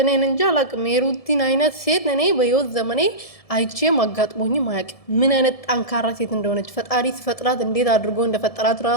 እኔን እንጂ አላቅም። የሩቲን አይነት ሴት እኔ በህይወት ዘመኔ አይቼም አጋጥሞኝም አያውቅም። ምን አይነት ጠንካራ ሴት እንደሆነች ፈጣሪ ሲፈጥራት እንዴት አድርጎ እንደፈጠራት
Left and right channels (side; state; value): right; late; 1.7 ms